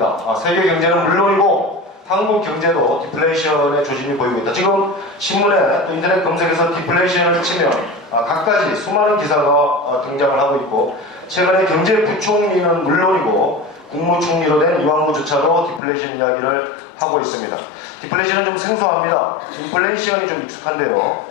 세계 경제는 물론이고 한국 경제도 디플레이션의 조짐이 보이고 있다. 지금 신문에 또 인터넷 검색에서 디플레이션을 치면 각가지 수많은 기사가 등장을 하고 있고 최근에 경제부총리는 물론이고 국무총리로 된 이완구조차도 디플레이션 이야기를 하고 있습니다. 디플레이션은 좀 생소합니다. 인플레이션이 좀 익숙한데요.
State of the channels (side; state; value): right; drops out; at 15.8 s